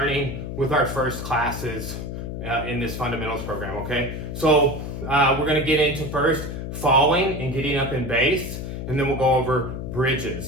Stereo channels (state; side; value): noise; left; hum, 6 dB below the sound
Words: with our first classes in this fundamentals program, okay? So we're gonna get into first falling and getting up in base, and then we'll go over